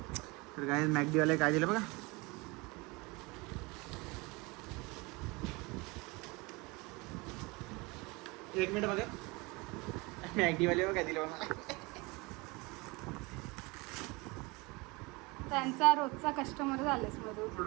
तर काय मॅगडीवाले काय दिलं बघा. एक मिनिट बघा, मॅगडीवाले काय दिलं बघा. त्यांचा रोजचा कस्टमर झालेस मधून.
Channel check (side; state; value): left; quieter; 25.5 dB